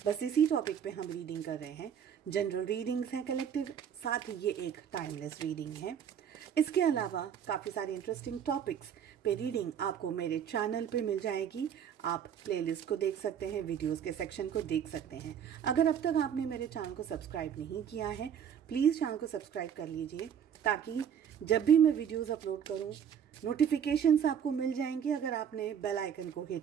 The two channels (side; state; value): left; quieter; 8.5 dB